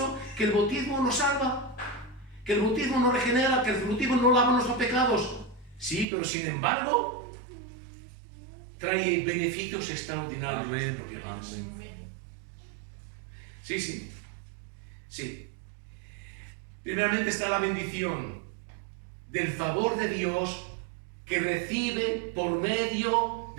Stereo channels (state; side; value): drops out; left; at 6.1 s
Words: que el bautismo nos salva, que el bautismo nos regenera, que el bautismo no lava nuestros pecados. Sí, pero sin embargo, trae beneficios extraordinarios. Amén, amén. Sí, sí, sí. Primeramente está la bendición del favor de Dios que recibe por medio